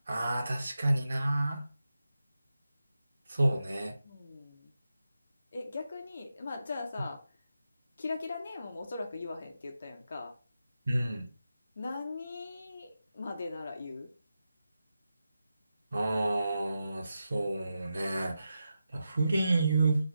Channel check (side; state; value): both; inverted; correlation -0.89